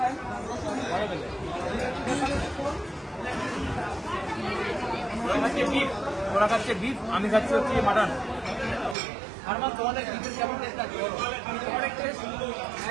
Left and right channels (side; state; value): left; drops out; at 9.0 s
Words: ভালো পেলে ওরা খাচ্ছে বিফ, আমি খাচ্ছি হচ্ছে মাটন। আর তোমাদের বিফের কেমন টেস্ট আছে বলো? অনেক টেস্ট।